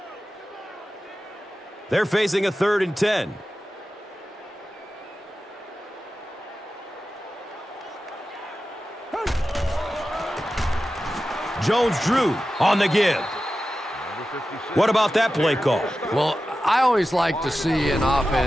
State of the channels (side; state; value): both; normal; correlation 0.93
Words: They're facing a 3rd and 10. Jones drew on the give. What about that play call? Well, I always like to see an